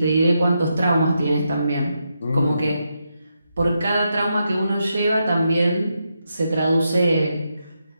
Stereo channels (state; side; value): inverted; both; correlation -0.83